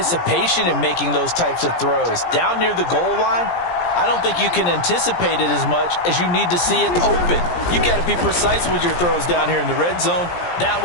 in making those types of throws. Down near the goal line, I don't think you can anticipate it as much as you need to see it open. You've got to be precise with your throws down here in the red zone. That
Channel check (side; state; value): right; late; 17 ms